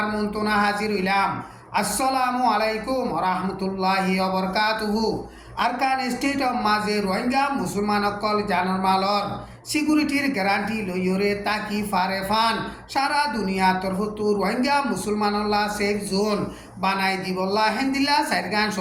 মন্তনা হাজির হইলাম। আসসালামু আলাইকুম রহমতুল্লাহি ওবরকাতুহু। আরকান স্টেট অফ মাঝে রোহিঙ্গা মুসলমান অকল জানার মালর সিকিউরিটির গ্যারান্টি লইয়রে তাকি ফারে ফান সারা দুনিয়া তরফতু রোহিঙ্গা মুসলমানল্লা সেফ জোন বানাই দিবল্লা হেন্দিল্লা সাইরগান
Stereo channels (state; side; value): identical; both; correlation 1.00